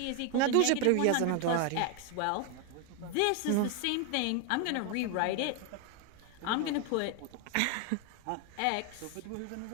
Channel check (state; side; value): different; both; correlation 0.01